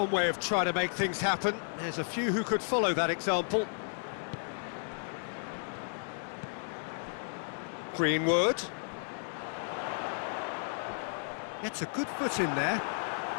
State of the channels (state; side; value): silent; right; digital silence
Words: way of trying to make things happen. There's a few who could follow that example. Greenwood. Gets a good foot in there.